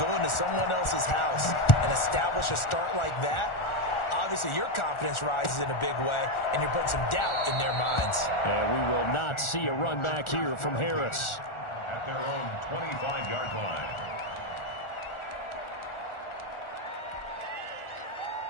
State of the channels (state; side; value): late; right; 1.4 ms